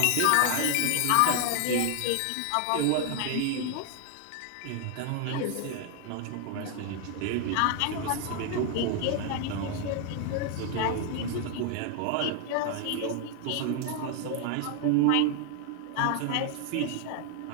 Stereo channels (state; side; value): different; both; correlation 0.00